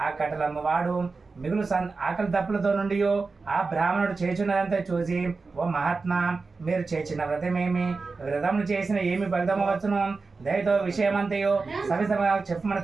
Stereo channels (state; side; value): quieter; left; 4.2 dB